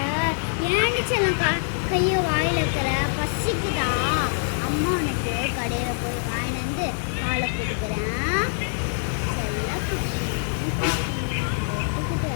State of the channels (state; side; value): silent; right; digital silence